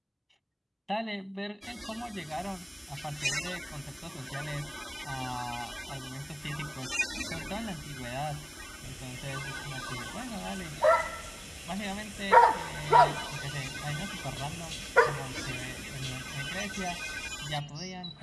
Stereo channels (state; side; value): identical; both; correlation 1.00